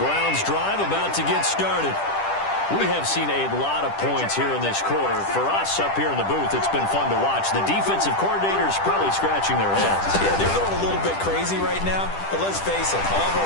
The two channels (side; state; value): right; late; 10 ms